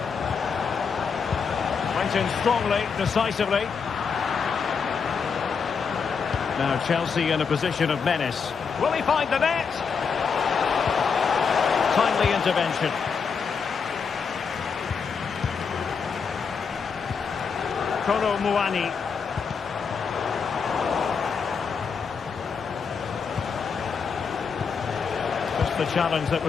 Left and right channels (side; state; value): right; quieter; 5.9 dB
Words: Went in strongly, decisively. Now Chelsea in a position of menace. Will he find the net? Timely intervention. Kolo Muani. Just the challenge that